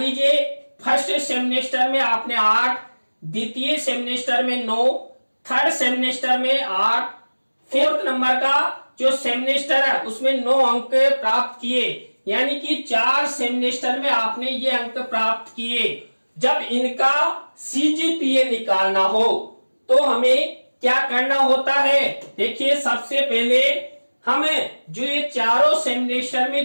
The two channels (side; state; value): both; inverted; correlation -1.00